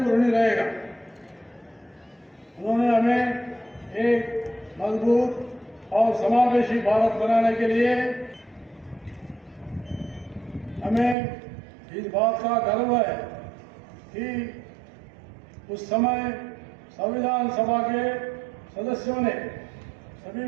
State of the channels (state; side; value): drops out; left; at 11.2 s